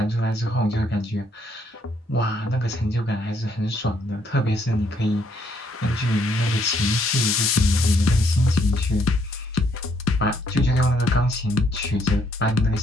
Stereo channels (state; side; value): normal; both; correlation 0.70